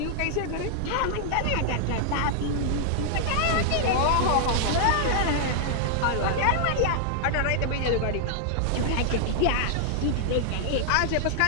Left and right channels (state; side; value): different; both; correlation -0.01